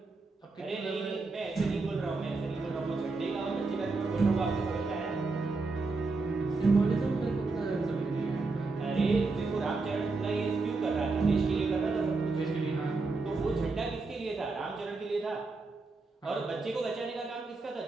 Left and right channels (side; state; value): left; quieter; 3.8 dB